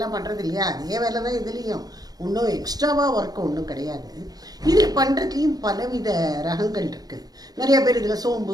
பண்ணுறது இல்லையா, அதே வேலை தான் இதுலேயும். ஒன்றும் எக்ஸ்ட்ராவாக ஒர்க்கு ஒன்றும் கிடையாது. இதில் பண்ணுறதுலேயும் பலவித ரகங்கள் இருக்குது. நிறைய பேர் இதில்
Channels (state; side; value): late; left; 0.19 ms